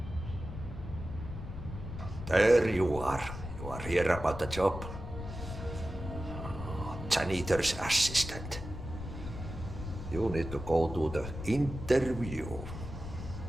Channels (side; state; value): left; noise; rumble, 9 dB below the sound